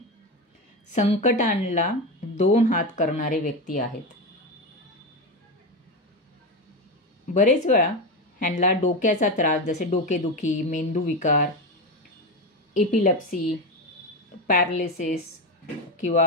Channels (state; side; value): normal; both; correlation 0.16